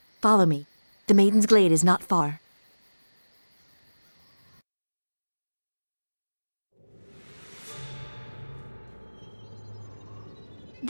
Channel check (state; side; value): inverted; both; correlation -1.00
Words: Follow me. The Maiden's Glade is not far.